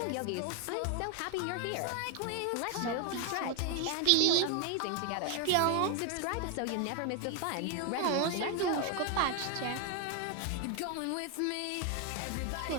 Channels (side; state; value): both; different; correlation 0.01